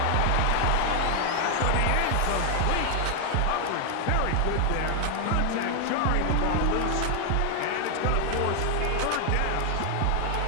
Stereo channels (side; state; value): both; different; correlation 0.00